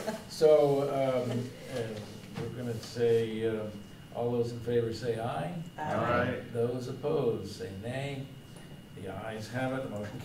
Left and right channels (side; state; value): both; identical; correlation 1.00